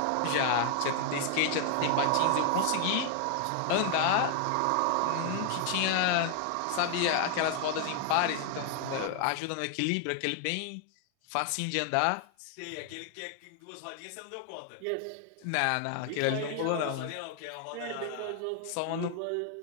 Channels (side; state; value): both; different; correlation 0.00